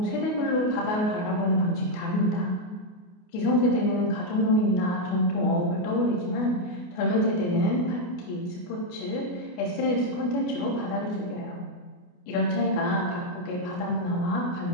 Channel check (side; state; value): right; late; 28 ms